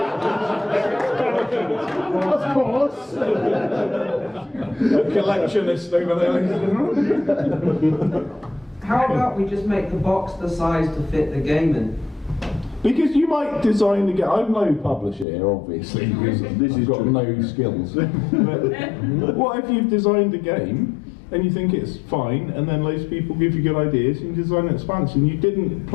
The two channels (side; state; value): right; drops out; at 15.2 s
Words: Of course. A collectionist over there. How about we just make the box the size to fit the game in? Because you might design the game. I'm no publisher here, obviously, because this has got no skills. But what if you've designed a game and you think it's fine, and then loads of people give you good ideas, and you design an expansion you didn't